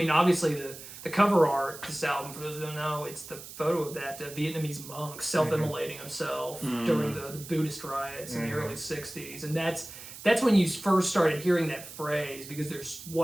obviously the cover art of this album, for those who don't know, it's the photo of that Vietnamese monk self-immolating himself during the Buddhist riots in the early 60s. And that's when you first started hearing that phrase, because there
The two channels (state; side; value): noise; right; hiss, 14 dB below the sound